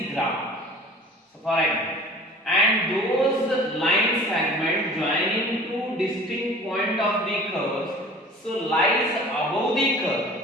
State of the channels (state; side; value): normal; both; correlation 0.45